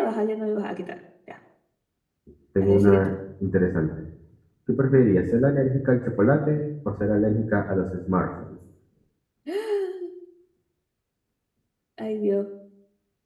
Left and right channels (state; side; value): identical; both; correlation 1.00